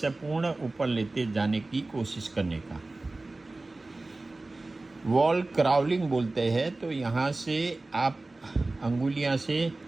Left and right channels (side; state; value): left; quieter; 3.1 dB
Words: पूर्ण ऊपर लेते जाने की कोशिश करने का। वॉल क्राउलिंग बोलते हैं। तो यहाँ से आप अंगुलियाँ से